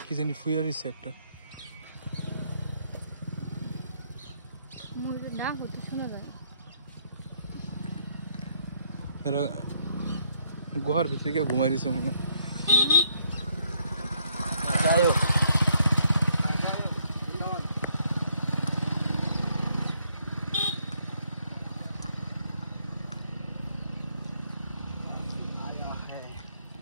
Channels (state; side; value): inverted; both; correlation -0.71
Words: কি জানি ফুয়ার এসে একটা ময়ূরের ডাক হতে শোনা যায়। এরা গুহার ভিতরে গিয়ে ঘুমাই দিছে মনে হয়। যাই হোক